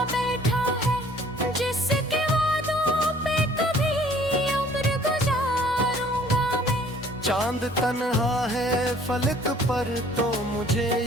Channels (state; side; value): normal; both; correlation 0.56